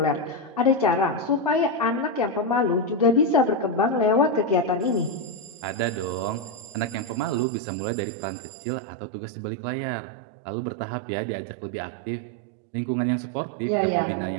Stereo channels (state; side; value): drops out; left; at 7.5 s